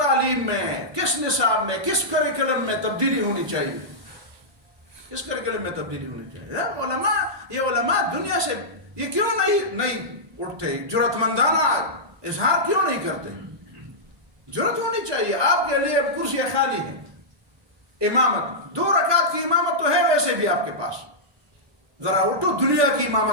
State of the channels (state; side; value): late; left; 1.2 ms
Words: میں، کس نصاب میں، کس کریکلم میں تبدیلی ہونی چاہیے؟ کس کریکلم میں تبدیلی ہونی چاہیے؟ یہ علماء دنیا سے یہ کیوں نہیں اٹھتے؟ جرأت مندانہ اظہار کیوں نہیں کرتے؟ جرأت ہونی چاہیے. آپ کے لیے کرسیاں خالی ہیں، امامت 2 رکعت کی امامت تو ہے ویسے بھی آپ کے پاس، ذرا اٹھو دنیا کی